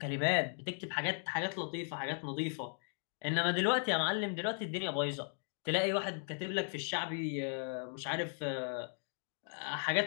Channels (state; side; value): silent; right; 53 dB below the other